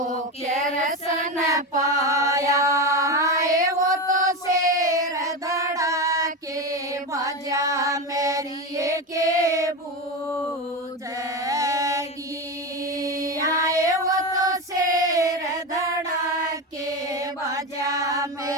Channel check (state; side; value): normal; both; correlation 0.18